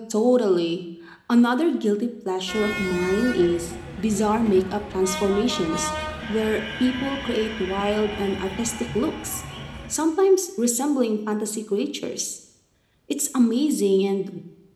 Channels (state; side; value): identical; both; correlation 1.00